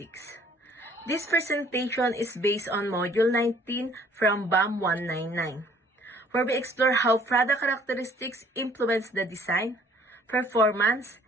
This presentation is based on Module 19 from BAM 199, where we explore how product characteristics influence the design, performance,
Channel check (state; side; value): normal; both; correlation 0.58